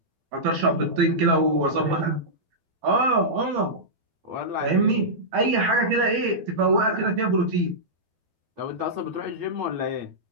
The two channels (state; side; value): late; left; 12 ms